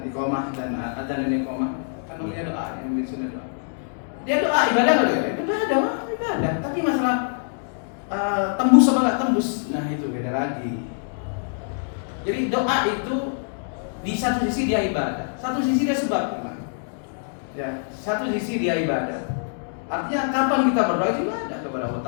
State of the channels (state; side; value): silent; right; digital silence